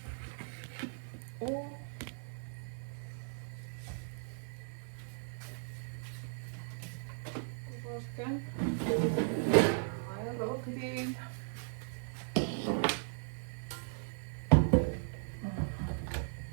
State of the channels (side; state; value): left; silent; 53 dB below the other